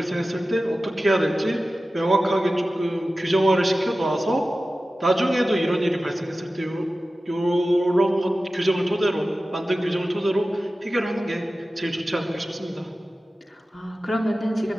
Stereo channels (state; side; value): normal; both; correlation 0.95